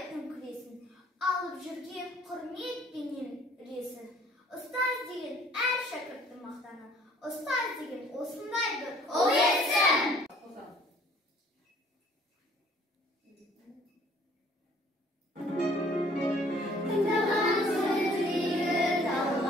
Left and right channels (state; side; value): normal; both; correlation 0.57